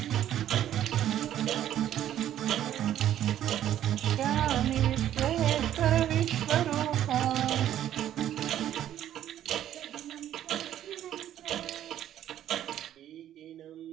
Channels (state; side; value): quieter; left; 11.5 dB